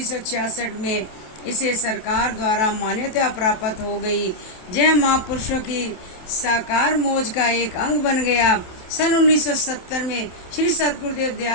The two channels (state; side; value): late; right; 27 ms